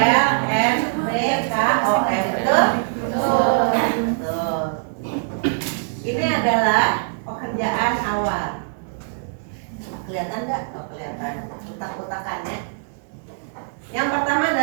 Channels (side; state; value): left; silent; digital silence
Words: N, P, K, O, M. Betul? Betul. Ini adalah pekerjaan awal. Kelihatan nggak? Oh, kelihatan. Utak-utakannya. Yang pertama